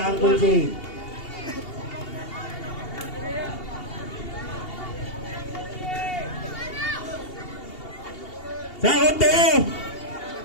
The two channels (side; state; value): right; late; 2.8 ms